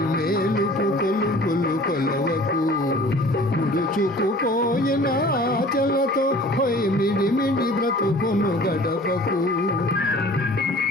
కొలువులు కొలవకు. ముడుచుకుపోయిన ఆచలతో పోయి మిడిమిడి బ్రతుకును గడపకు.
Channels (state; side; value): normal; both; correlation 0.47